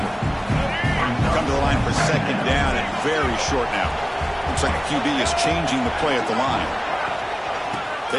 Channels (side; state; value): both; identical; correlation 1.00